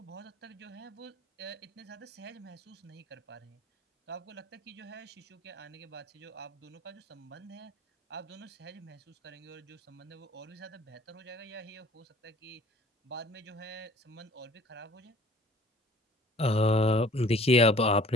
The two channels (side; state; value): both; normal; correlation 0.51